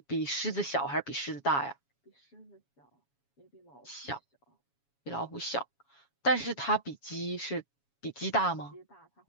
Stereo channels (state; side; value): late; right; 7.2 ms